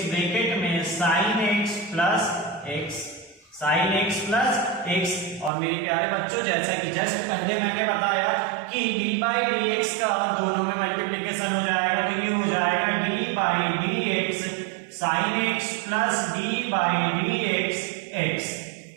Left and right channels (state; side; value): drops out; left; at 5.5 s